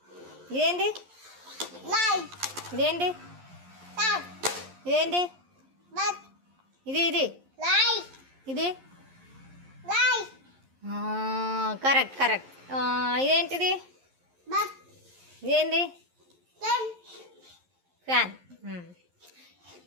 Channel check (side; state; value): left; late; 11 ms